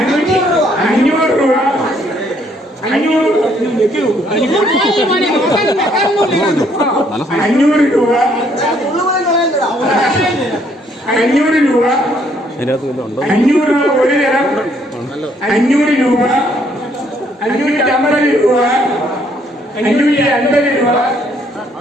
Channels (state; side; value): normal; both; correlation 0.67